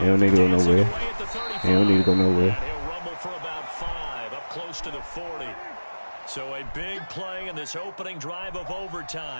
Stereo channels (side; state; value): both; inverted; correlation -1.00